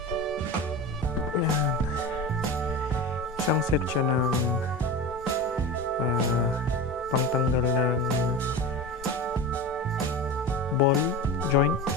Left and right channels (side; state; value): both; normal; correlation 0.28